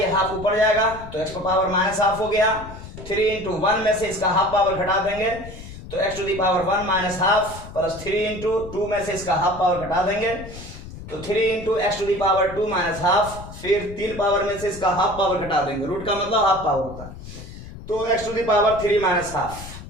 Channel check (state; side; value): noise; left; rumble, 14 dB below the sound